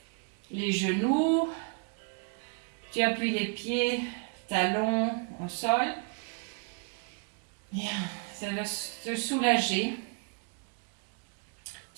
les genoux. Tu appuies les pieds, talons au sol. Bien, ça va te soulager.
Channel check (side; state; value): left; quieter; 38.0 dB